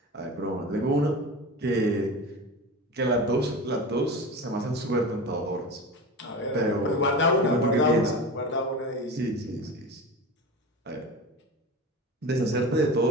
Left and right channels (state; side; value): normal; both; correlation 0.30